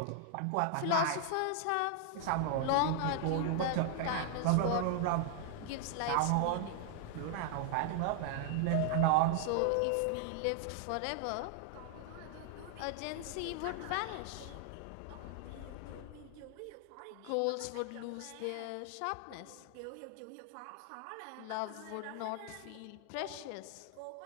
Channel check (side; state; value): both; different; correlation 0.00